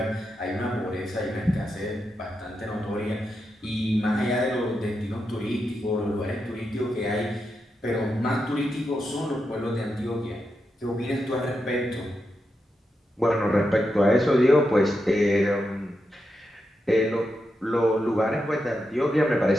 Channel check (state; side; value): normal; both; correlation 0.86